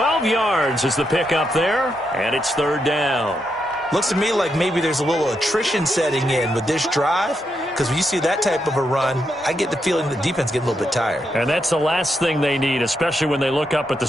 yards is the pickup there, and it's 3rd down. Looks to me like maybe there's a little attrition setting in with this drive, because when you see that type of a run, I get the feeling the defense getting a little bit tired. And that's the last thing they need, especially when they look up at the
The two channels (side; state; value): both; normal; correlation 0.82